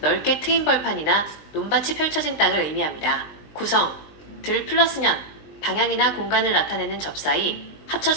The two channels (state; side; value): late; right; 19 ms